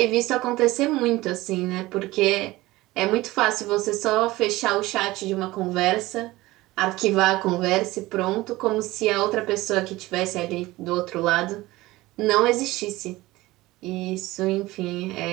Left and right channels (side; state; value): left; quieter; 18.8 dB